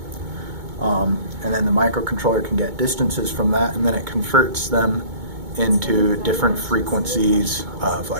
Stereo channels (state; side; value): late; left; 2.2 ms